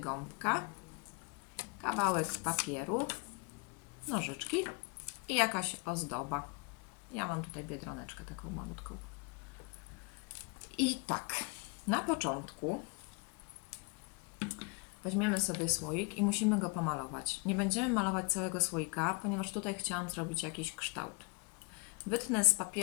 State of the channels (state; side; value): quieter; right; 31.7 dB